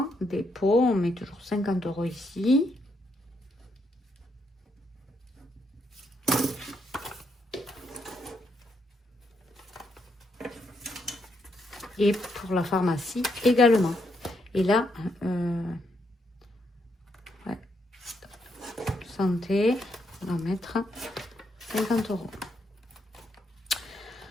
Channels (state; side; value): normal; both; correlation 0.78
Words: dépôt, on met toujours 50 € ici. Et pour la pharmacie également. Et là, ouais, santé, on va mettre 50 €.